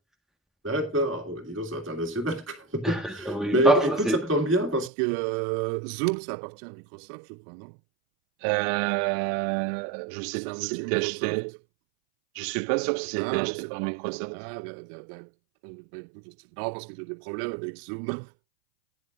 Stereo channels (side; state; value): left; drops out; at 4.9 s